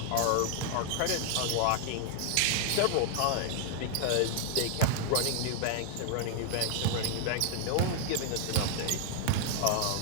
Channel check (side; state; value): both; different; correlation -0.01